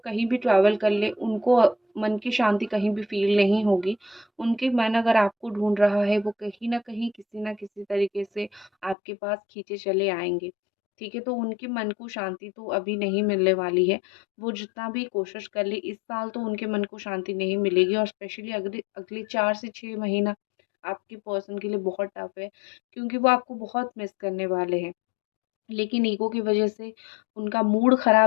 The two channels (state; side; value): drops out; right; at 9.0 s